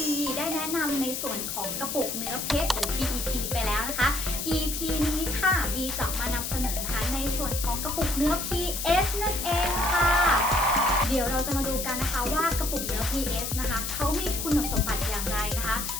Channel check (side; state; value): left; noise; hiss, 4 dB below the sound